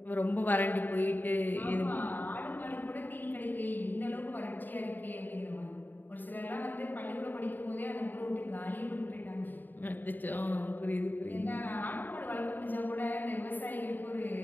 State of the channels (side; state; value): right; late; 0.089 ms